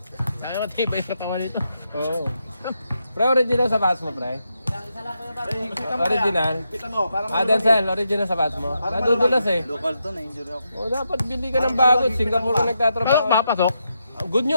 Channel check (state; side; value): inverted; both; correlation -0.83